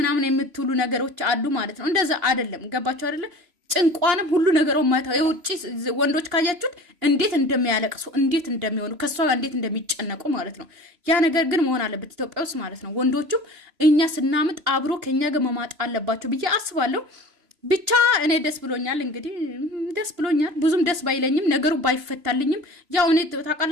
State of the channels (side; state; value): left; late; 2.8 ms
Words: የምትሉ ነገሮች አሉ ማለት ነው። እንደዛ አይደለም። ገባችሁ አይደለም? ጭንቋንም ሁሉ ነገሩ ማታ የውጪ ወንዶች ካያችሁት እንዴት እንደሚያለቅሱ እንዴት እንደሚሆኑ ከሷ እንዴት እንደሚጨነቁ ማለት ነው። ያ ነገር ግን መሆን አለበት ኢትዮጵያ ውስጥ ማለት ነው። ወንዶቹም እኛ ስናምጥ አብሮ ከኛ ጋር መማጥ አለባቸው ብዬ አስባለሁ። ብቻ እኔ ደስ ብሎኛል። እንግዲህ ደስ ብሎኛል። ብዙም ደስ ባይለኝም ነገሩ ባይፈታልኝም ያው እኔ